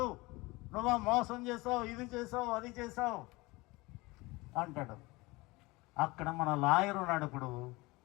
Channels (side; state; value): right; quieter; 22.6 dB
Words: నువ్వు మోసం చేసావు, ఇది చేసావు, అది చేసావు అంటాడు. అక్కడ మన లాయర్ ఉన్నాడు. ఇప్పుడు